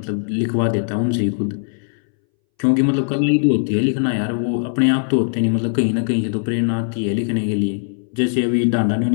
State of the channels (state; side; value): silent; right; 63 dB below the other